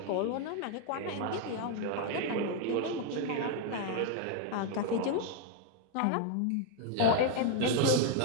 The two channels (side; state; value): both; different; correlation 0.00